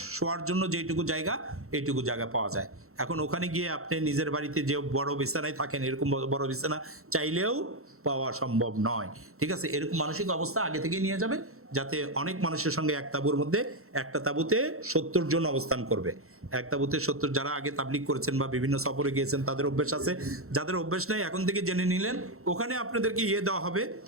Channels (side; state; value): left; late; 0.63 ms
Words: শোয়ার জন্য যেটুকু জায়গা, এইটুকু জায়গা পাওয়া যায়। এখন ওখানে গিয়ে আপনি নিজের বাড়িতে যে বড় বিছানায় থাকেন, এরকম বড় বিছানা চাইলেও পাওয়া সম্ভব নয়, ঠিক আছে? এরকম মানসিক অবস্থা আগে থেকেই নিয়ে যাবে, যাতে অনেক মানুষের সঙ্গে এক তাঁবুর মধ্যে, একটা তাঁবুতে 70 জন অবস্থান করবে। এক তাঁবুতে 70, যারা আগে তাবলিগ করেছেন বা বিভিন্ন সফরে গিয়েছেন তাদের অভ্যেস আছে, যাদের অভ্যেস নেই এখন থেকে জেনে নিলেন। ওখানে আপনাদেরকে দেওয়া হবে,